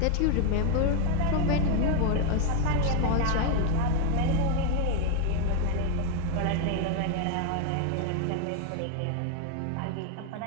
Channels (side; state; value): both; different; correlation 0.01